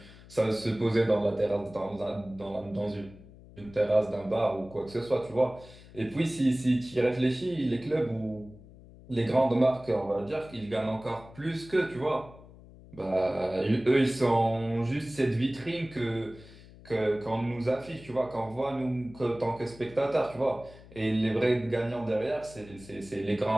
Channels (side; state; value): left; noise; hum, 20 dB below the sound